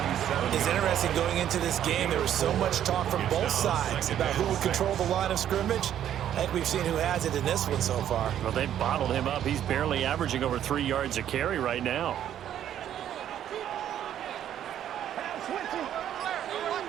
It's interesting going into this game. There was so much talk from both sides about who would control the line of scrimmage. I think we've seen who has it in this one so far. Well, they've bottled him up. He's barely averaging over 3 yards a carry right now.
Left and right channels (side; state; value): left; quieter; 10.6 dB